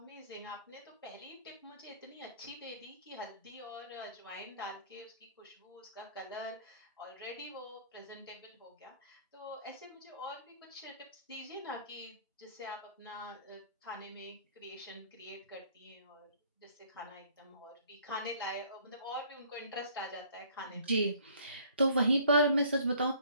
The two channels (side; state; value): both; inverted; correlation -0.57